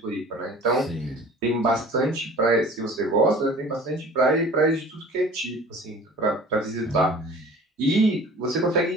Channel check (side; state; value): both; normal; correlation 0.45